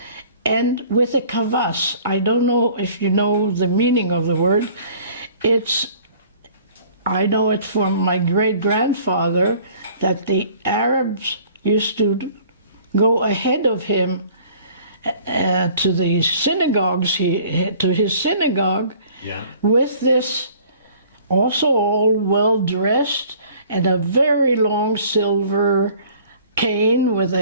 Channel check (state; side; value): inverted; both; correlation -0.52